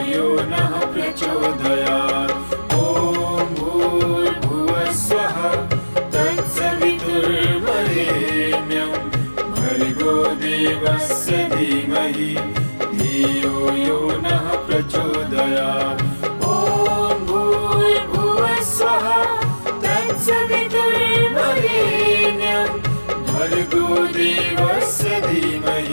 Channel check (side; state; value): both; inverted; correlation -1.00